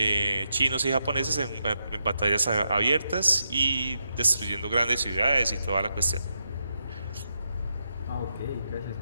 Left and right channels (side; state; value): both; inverted; correlation -0.83